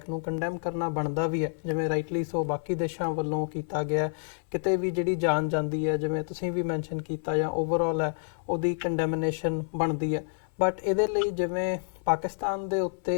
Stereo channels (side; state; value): right; silent; 59 dB below the other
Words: ਨੂੰ, ਕੰਡੈਮ ਕਰਨਾ ਬਣਦਾ ਵੀ ਹੈ, ਜਿਵੇਂ ਰਾਈਟਲੀ ਸੋ ਬਾਕੀ ਦੇਸ਼ਾਂ ਵੱਲੋਂ ਕੀਤਾ ਗਿਆ। ਕਿਤੇ ਵੀ ਜਿਹੜੀ ਜਾਨ ਜਾਂਦੀ ਹੈ, ਜਿਵੇਂ ਤੁਸੀਂ ਵੀ ਮੈਂਸ਼ਨ ਕੀਤਾ, ਜਾਂ ਓਵਰਆਲ ਹੈ ਉਹਦੀ ਕੰਡੈਮਨੇਸ਼ਨ ਬਣਦੀ ਹੈ। ਬਟ ਇਹਦੇ ਲਈ ਜਿਵੇਂ ਪਾਕਿਸਤਾਨ ਦੇ ਉੱਤੇ